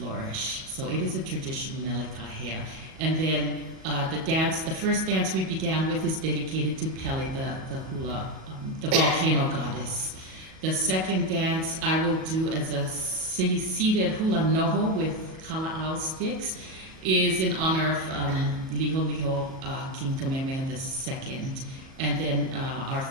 So it is a tradition, Melikahea. And then the first dance we began with is dedicated to Pele, the hula, the volcano goddess. The second dance I will do as a seated hula noho with kala'au sticks is in honor of Liho Liho, King Kamehameha II. And then our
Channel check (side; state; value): left; late; 37 ms